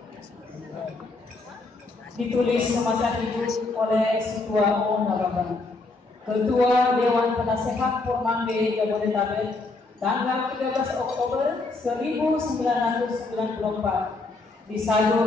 Ditulis semasa hidup oleh Ketua O. Nababan, Ketua Dewan Penasehat Pormande Jabodetabek, tanggal 13 Oktober 1994,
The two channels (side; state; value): right; quieter; 3.4 dB